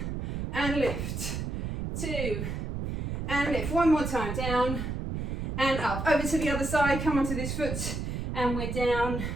and lift, two, and lift, one more time, down, and up, over to the other side, come onto this foot, and we're down,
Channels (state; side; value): noise; right; rumble, 4 dB below the sound